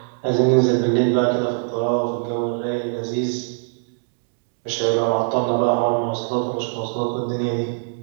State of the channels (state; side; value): silent; left; digital silence